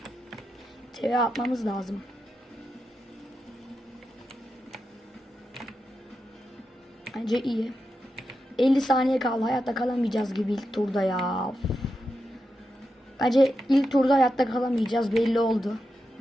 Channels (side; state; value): both; normal; correlation 0.88